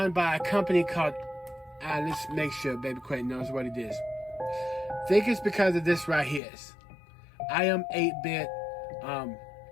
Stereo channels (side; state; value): right; drops out; at 6.4 s